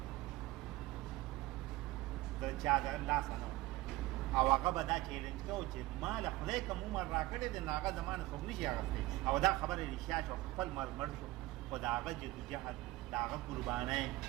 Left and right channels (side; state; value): left; quieter; 18.3 dB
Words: د چا د لاسه نه او هغه به دا چیلنج کوو چې ما له خدای کوم عمر راکړی دی نو هغه زما نه څوک نشي اخیستی او دا خبره رښتیا شو خپل مرګ مړ شو خو د هغه جدوجهد د هغه قربانۍ